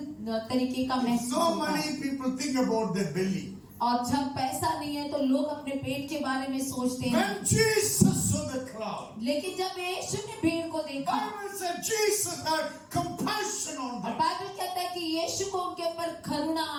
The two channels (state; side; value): identical; both; correlation 1.00